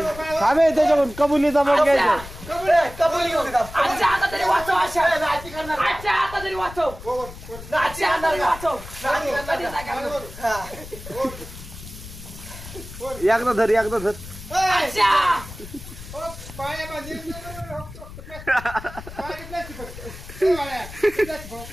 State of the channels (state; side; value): noise; left; rumble, 14 dB below the sound